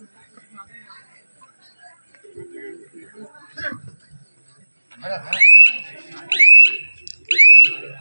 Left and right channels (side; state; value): both; inverted; correlation -1.00